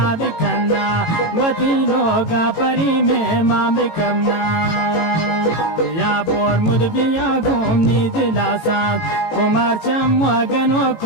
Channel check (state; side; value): late; right; 18 ms